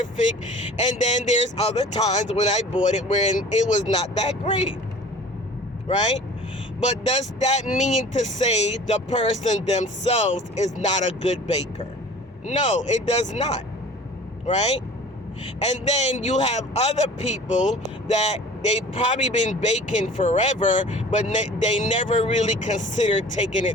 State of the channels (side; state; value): both; normal; correlation 0.44